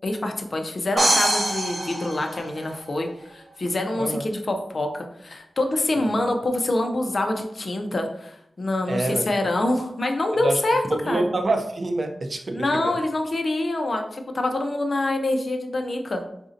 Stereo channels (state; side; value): normal; both; correlation 0.92